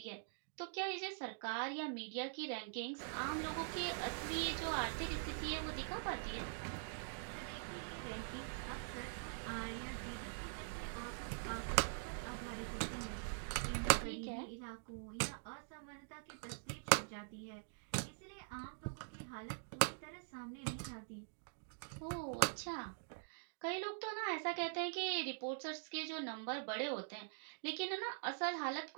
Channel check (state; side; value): silent; left; digital silence